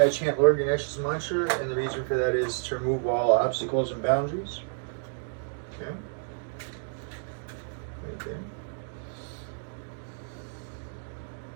I chant Lord Ganesh's mantra, and the reason for that is to remove all obstacles and boundaries. Okay. Right there.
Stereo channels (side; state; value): left; silent; digital silence